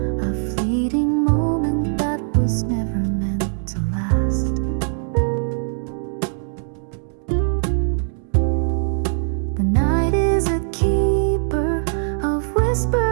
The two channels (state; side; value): silent; left; digital silence